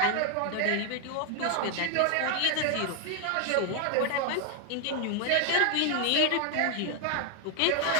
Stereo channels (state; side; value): different; both; correlation 0.01